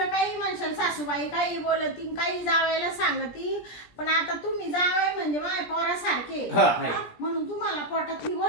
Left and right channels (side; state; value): right; late; 17 ms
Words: काही म्हणशाल सासूबाई काही बोलती काही जावायला सांगती, पण आता तुम्ही जावाई म्हणजे माय पोरासारखे. हा, आहे. म्हणून तुम्हाला पोटातली